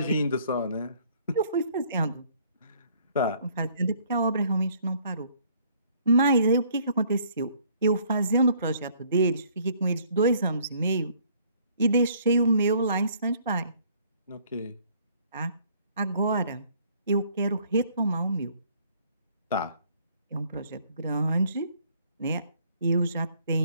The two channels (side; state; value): both; inverted; correlation -0.61